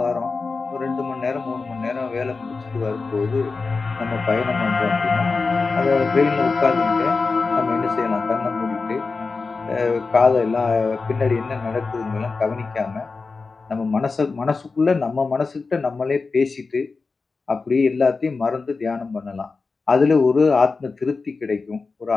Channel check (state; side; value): quieter; right; 4.2 dB